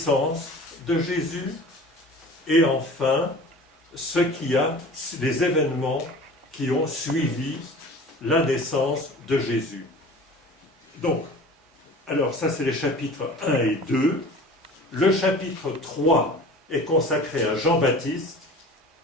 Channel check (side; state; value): both; normal; correlation 0.41